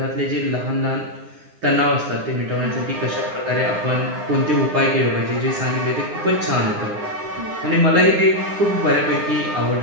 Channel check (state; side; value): late; left; 9.8 ms